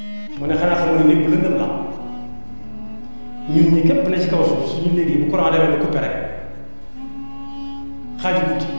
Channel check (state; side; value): inverted; both; correlation -1.00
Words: mu ne xanaa xamoo ne néeg bu lëndëm la ñun ñi képp ne ci kaw suuf suñu néeg yi bu courant demee ba coupé rek xaaju guddi